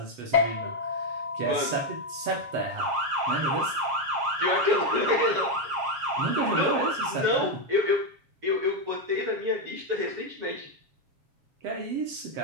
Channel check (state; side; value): late; left; 7.3 ms